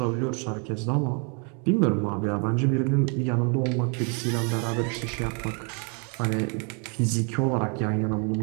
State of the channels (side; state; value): left; quieter; 36.8 dB